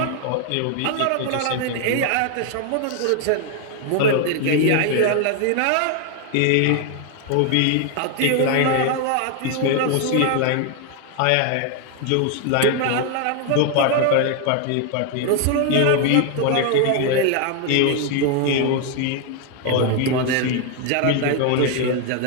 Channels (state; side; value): different; both; correlation 0.01